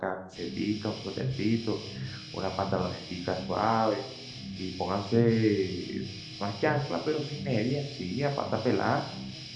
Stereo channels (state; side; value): identical; both; correlation 1.00